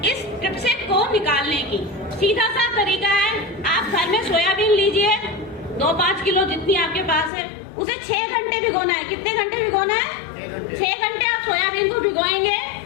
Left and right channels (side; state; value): right; drops out; at 7.3 s